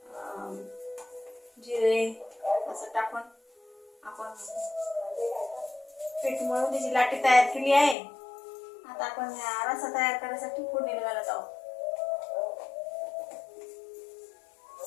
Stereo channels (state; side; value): drops out; right; at 8.0 s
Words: जिरे असं टाकून आपण पीठ मळून त्याची लाटी तयार केली आहे. आता आपण रसा तयार करण्यासाठी फोडणी घालत आहोत.